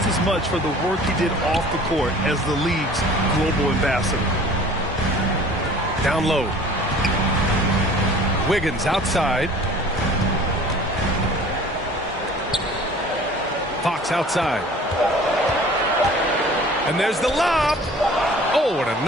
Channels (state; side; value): normal; both; correlation 0.47